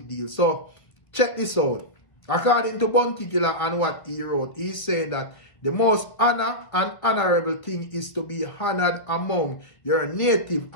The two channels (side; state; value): right; late; 1.5 ms